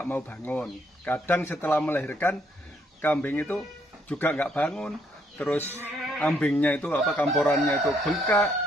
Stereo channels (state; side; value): normal; both; correlation 0.70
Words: mau bangun. Kadang setelah melahirkan kambing itu juga nggak bangun. Terus ambingnya itu kamporannya itu bengkak.